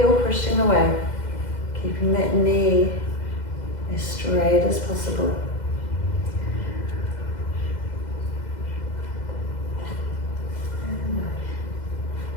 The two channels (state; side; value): late; right; 2.0 ms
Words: pushing away, keeping that knee as straight as possible.